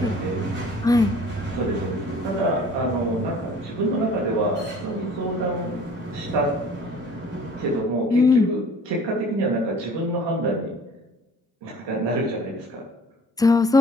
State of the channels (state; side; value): normal; both; correlation 0.50